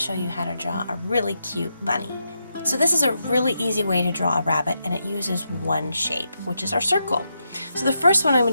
you how to draw a really cute bunny. So this is a really easy way to draw a rabbit, and it uses one shape, which is our circle. So the first one I'm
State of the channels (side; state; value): both; inverted; correlation -0.84